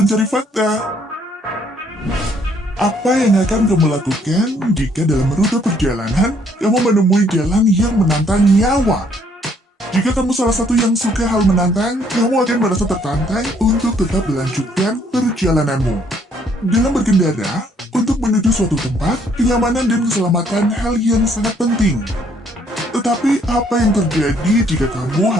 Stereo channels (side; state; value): both; normal; correlation 0.66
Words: fakta. Apa yang akan kamu lakukan jika dalam rute perjalanan kamu menemui jalan yang menantang nyawa? Jika kamu salah satu yang suka hal menantang, kamu akan merasa tertantang untuk tetap melanjutkan perjalananmu. Dalam berkendara, untuk menuju suatu tempat, kenyamanan dan keselamatan hal yang sangat penting. Tetapi apa yang terjadi jika kamu